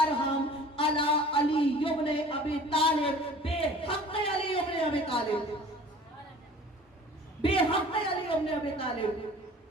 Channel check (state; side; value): normal; both; correlation 0.46